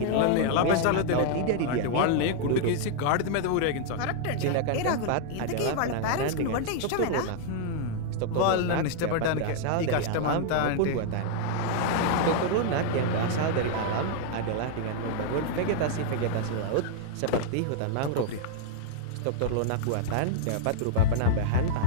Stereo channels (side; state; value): both; different; correlation -0.01